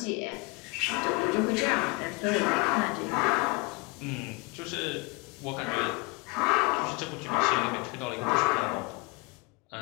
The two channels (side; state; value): right; quieter; 26.6 dB